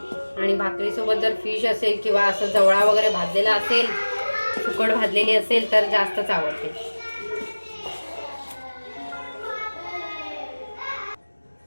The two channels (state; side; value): inverted; both; correlation -1.00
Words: आणि भाकरीसोबत जर फिश असेल किंवा असं जवळा वगैरे भाजलेला असेल, सुकट भाजलेली असेल तर जास्तच आवडते.